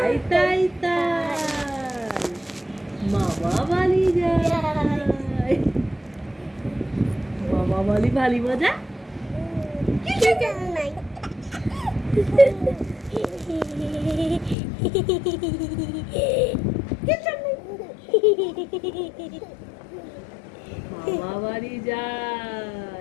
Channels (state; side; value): drops out; right; at 14.6 s